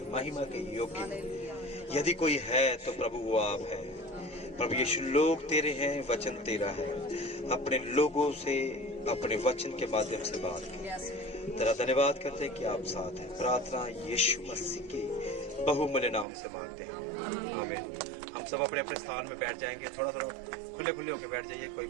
महिमा के योग्य हैं। यदि कोई है तो प्रभु वो आप है। प्रभु यीशु, लोग तेरे हैं, वचन तेरा है। अपने लोगों से अपने वचन के माध्यम से बात कर। तेरा धन्यवाद करते हैं कि आप साथ हैं। प्रार्थना यीशु मसीह के बहुमूल्य नाम से मांगते हैं, आमीन। हम सब अपने अपने स्थान में बैठ जाएंगे। थोड़ा थोड़ा खुले खुले होकर बैठ जाइए, कोई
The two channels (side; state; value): left; drops out; at 16.2 s